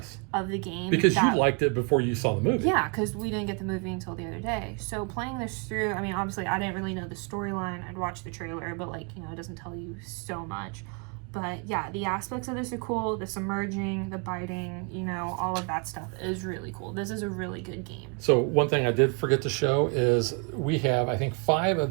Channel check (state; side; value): quieter; left; 34.0 dB